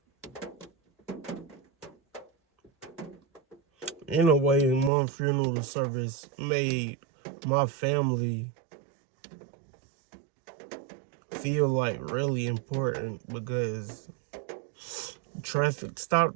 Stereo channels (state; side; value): drops out; left; at 4.9 s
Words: in a way, my funeral service made my family feel like really important because traffic